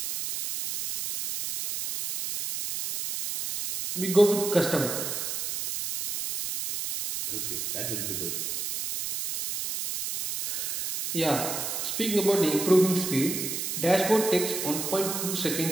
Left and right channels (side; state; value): right; noise; hiss, 3 dB below the sound